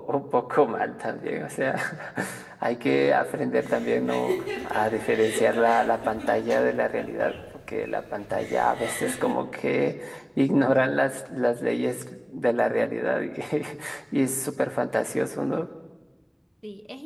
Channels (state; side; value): identical; both; correlation 1.00